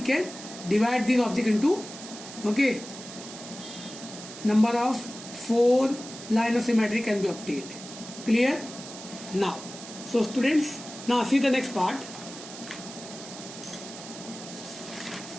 can divide this object into, okay, number of 4 line of symmetry can be obtained. Clear? Now so students, now see the next part.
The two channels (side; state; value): right; noise; hiss, 13 dB below the sound